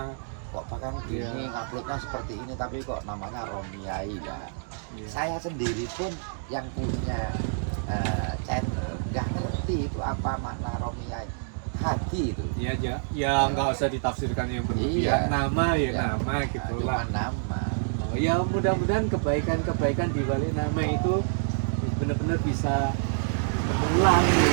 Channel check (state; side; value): silent; left; digital silence